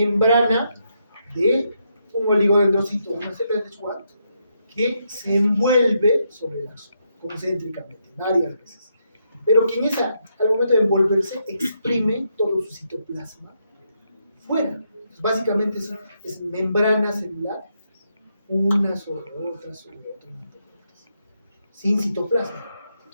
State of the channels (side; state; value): both; inverted; correlation -0.80